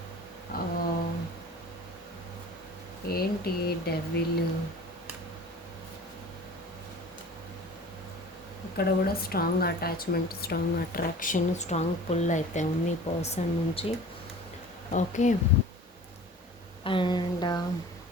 ఏంటి డెవిల్, ఇక్కడ కూడా strong attachment, strong attraction, strong pull అయితే ఉంది ఈ పర్సన్ నుంచి. Okay. And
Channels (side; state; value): both; normal; correlation 0.42